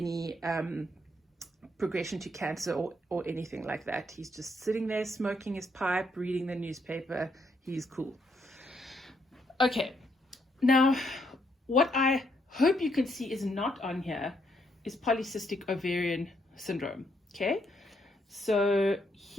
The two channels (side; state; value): both; normal; correlation 0.75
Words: progression to cancer or anything like that. He's just sitting there smoking his pipe, reading the newspaper. He's cool. Okay, now what I hope you can see is not on here is polycystic ovarian syndrome. Okay, so